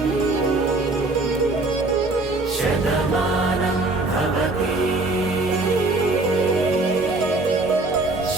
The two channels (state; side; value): quieter; left; 3.1 dB